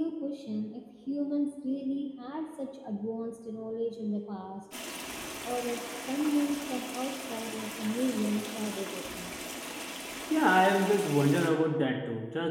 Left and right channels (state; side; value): identical; both; correlation 1.00